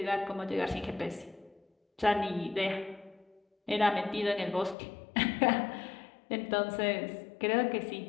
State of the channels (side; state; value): right; drops out; at 4.8 s